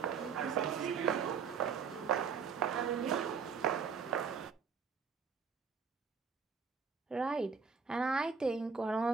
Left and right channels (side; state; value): left; quieter; 6.0 dB